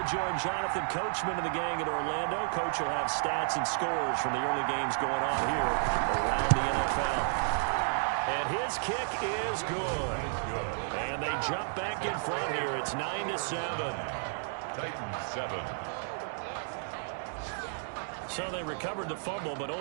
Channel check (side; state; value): left; silent; digital silence